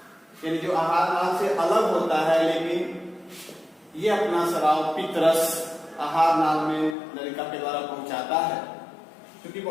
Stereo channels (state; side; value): drops out; right; at 7.0 s